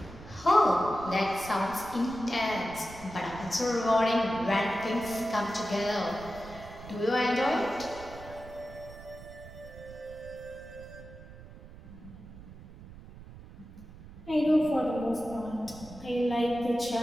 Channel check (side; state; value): right; noise; rumble, 17 dB below the sound